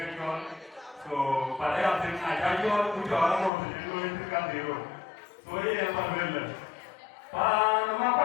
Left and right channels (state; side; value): drops out; right; at 3.5 s